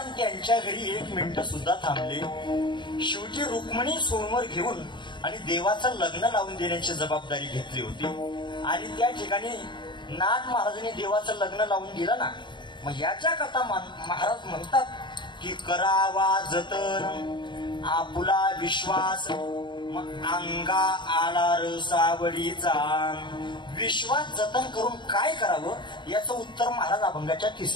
त्यांच्या घरी 1 मिनिट सुद्धा थांबले. शेवटी रुक्मिणी सोमवार घेऊन आणि देवाचं लग्न लावून देण्याची जबाबदारी घेतली होती. आणि त्या ठिकाणी नाथ महाराजांनी देवाचं लग्न लावून दिलं ना. मग याच्या कथा महाराज म्हणतात की करावा जतन आपुला विश्वास, मग अंगा आला रसावडीचा. विश्वास जतन करून काय करावं याचं उत्तर महाराज अभंगाच्या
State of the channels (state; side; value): late; right; 0.22 ms